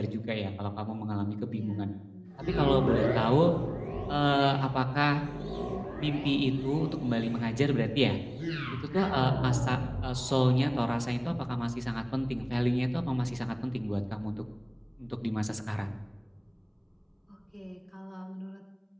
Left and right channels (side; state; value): both; identical; correlation 1.00